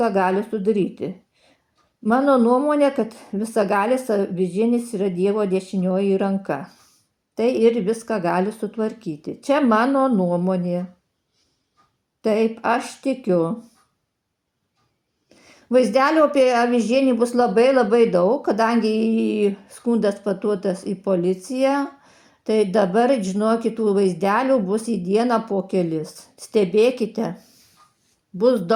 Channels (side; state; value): both; identical; correlation 1.00